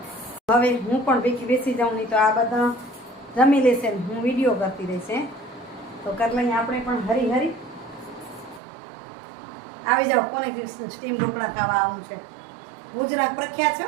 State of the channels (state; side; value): drops out; left; at 8.6 s